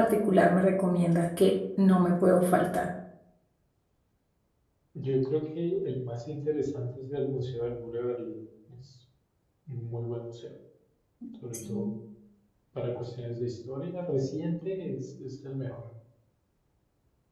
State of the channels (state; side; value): identical; both; correlation 1.00